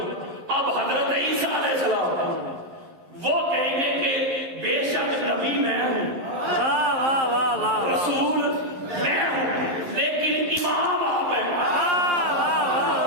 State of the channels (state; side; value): late; left; 11 ms